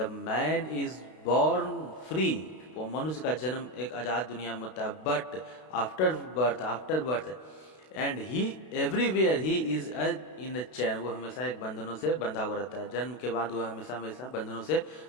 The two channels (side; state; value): right; late; 32 ms